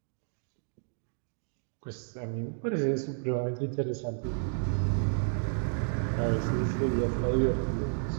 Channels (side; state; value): left; silent; digital silence